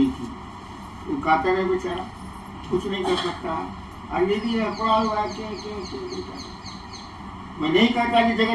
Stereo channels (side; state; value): both; identical; correlation 1.00